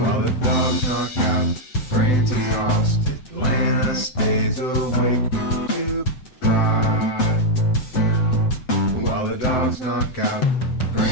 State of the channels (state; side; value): late; right; 7.9 ms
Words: the dogs knock out, brains exhausted, Lana stays awake to cry. While the dogs knock out,